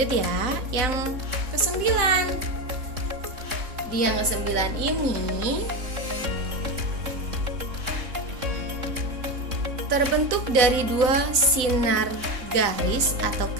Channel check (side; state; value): left; late; 3.9 ms